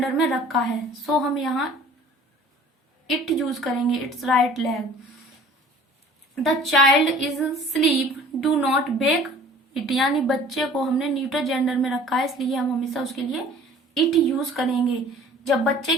में रखा है, सो हम यहाँ इट यूज करेंगे, it's right leg. The child is sleep, do not wake it, यानी बच्चे को हमने न्यूटर जेंडर में रखा है, इसलिए हम हमेशा उसके लिए इट यूज करेंगे। जब बच्चे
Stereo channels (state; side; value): normal; both; correlation 0.49